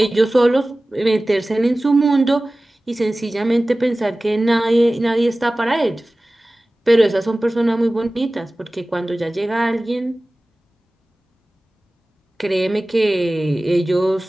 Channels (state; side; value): normal; both; correlation 0.97